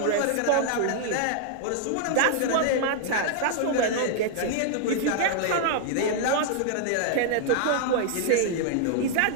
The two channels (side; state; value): both; different; correlation 0.00